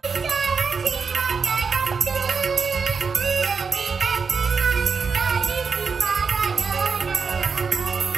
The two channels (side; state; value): left; quieter; 5.3 dB